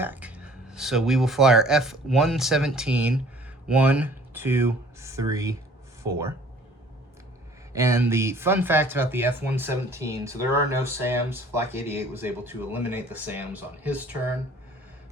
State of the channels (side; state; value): both; normal; correlation 0.53